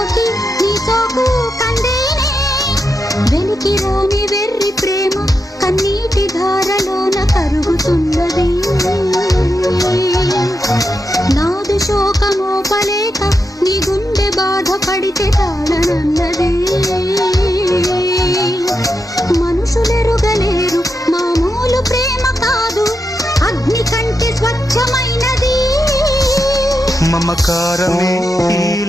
నీ సోకు కందేనే. వెలికి రాని వెర్రి ప్రేమ కన్నీటి ధారలోన కరుగుతున్నది. నాదు శోకమోపలేక నీ గుండె బాధపడితే తాళనన్నది. మనుషులెరుగలేరు మామూలు ప్రేమ కాదు అగ్ని కంటే స్వచ్ఛమైనది. మమకారమే ఈ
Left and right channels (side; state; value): both; normal; correlation 0.86